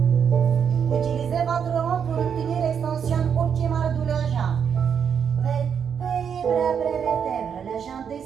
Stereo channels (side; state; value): left; quieter; 7.4 dB